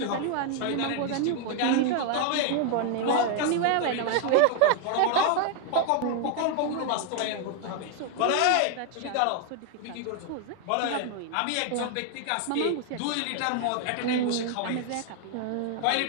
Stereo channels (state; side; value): different; both; correlation 0.00